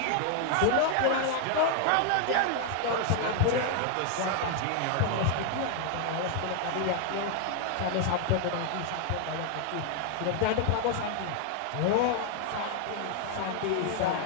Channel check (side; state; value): both; different; correlation 0.00